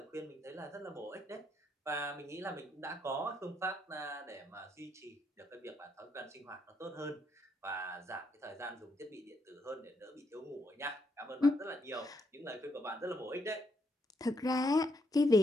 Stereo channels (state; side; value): normal; both; correlation 0.76